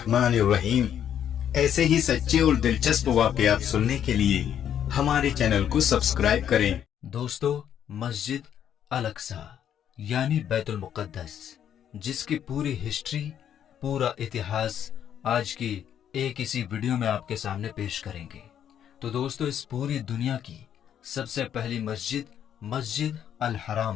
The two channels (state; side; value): quieter; right; 9.6 dB